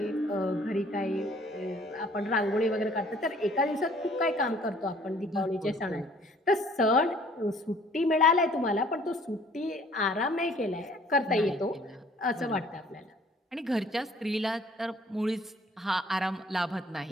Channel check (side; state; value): both; normal; correlation 0.56